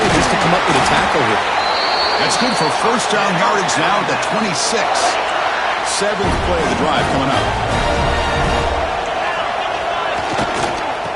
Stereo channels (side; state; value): both; identical; correlation 1.00